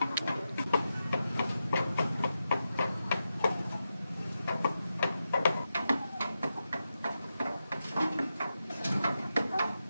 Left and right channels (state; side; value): inverted; both; correlation -0.88